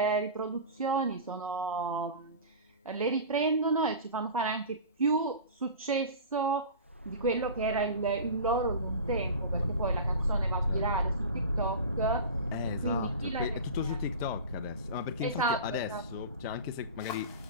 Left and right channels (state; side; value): inverted; both; correlation -0.33